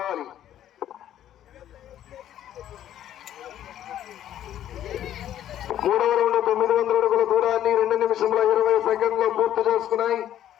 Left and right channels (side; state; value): right; quieter; 11.5 dB